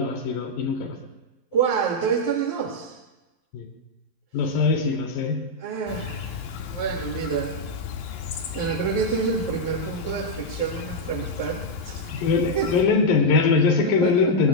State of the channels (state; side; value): late; right; 11 ms